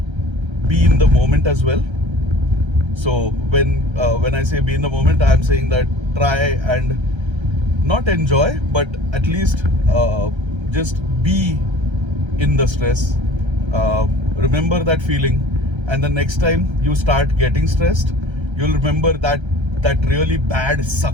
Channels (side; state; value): left; late; 1.3 ms